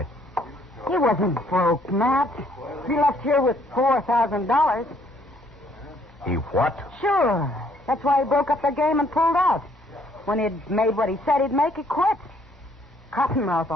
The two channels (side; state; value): both; normal; correlation 0.65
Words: He wasn't broke, Matt. He left here with $4,000. He what? Sure. That's why he broke up the game and pulled out. When he'd made what he said he'd make, he quit. Cottonmouth